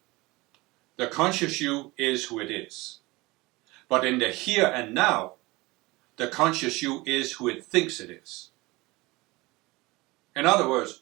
the conscious you is who it is. But in the here and now, the conscious you is who it thinks it is. In other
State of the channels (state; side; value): quieter; left; 22.3 dB